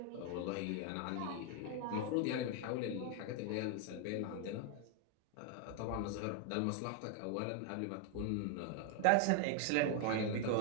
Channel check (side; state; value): both; different; correlation 0.01